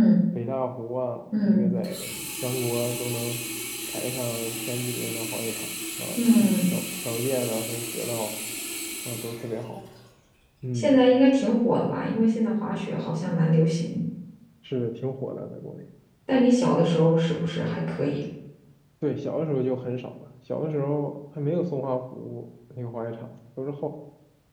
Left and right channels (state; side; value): identical; both; correlation 1.00